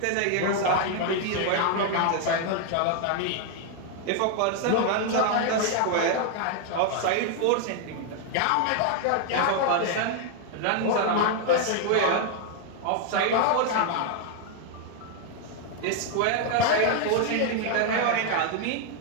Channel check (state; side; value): different; both; correlation 0.00